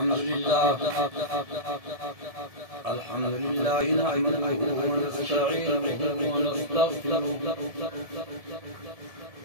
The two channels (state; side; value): late; left; 1.7 ms